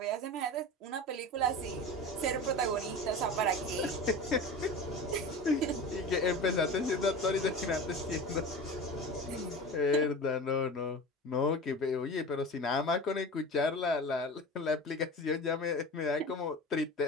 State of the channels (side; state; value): both; normal; correlation 0.32